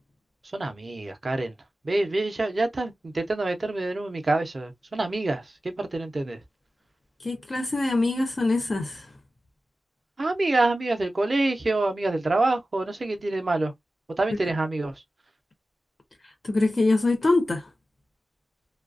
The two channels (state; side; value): normal; both; correlation 0.94